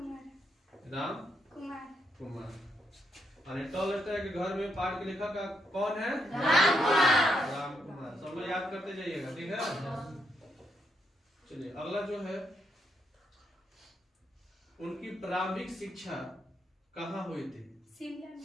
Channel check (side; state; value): both; normal; correlation 0.78